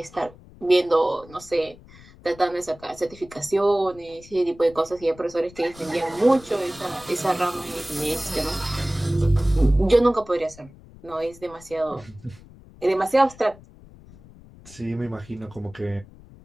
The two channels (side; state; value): left; noise; rumble, 22 dB below the sound